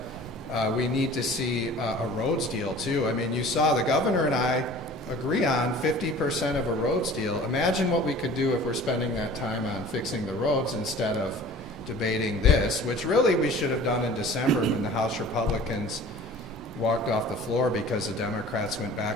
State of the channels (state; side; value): normal; both; correlation 0.44